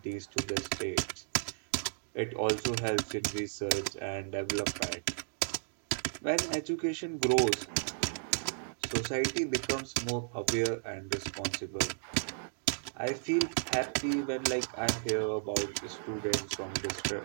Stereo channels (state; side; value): silent; left; digital silence